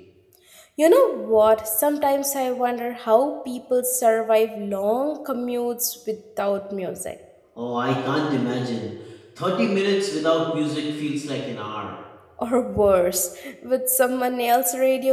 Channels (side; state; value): both; identical; correlation 1.00